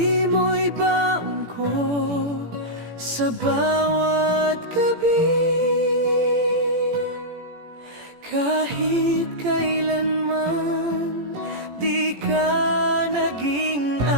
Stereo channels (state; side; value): late; left; 18 ms